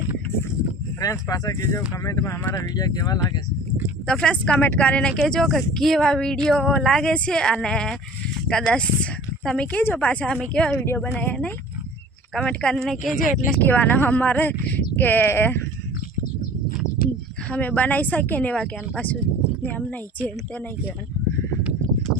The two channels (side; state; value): both; normal; correlation 0.45